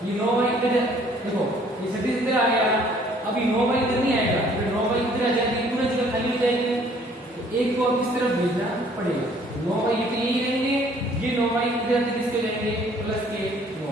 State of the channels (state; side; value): normal; both; correlation 0.59